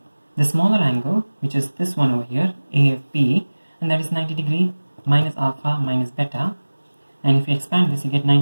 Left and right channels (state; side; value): inverted; both; correlation -1.00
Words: the smaller angle, which is this one over here, AFB, and that is 90 degree minus alpha minus beta. And if you expand this, you get